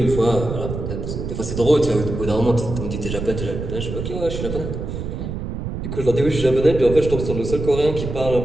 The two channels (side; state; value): right; noise; rumble, 6 dB below the sound